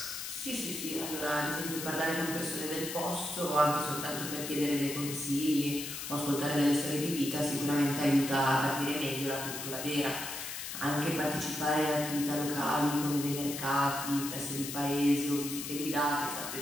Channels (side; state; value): left; noise; hiss, 7 dB below the sound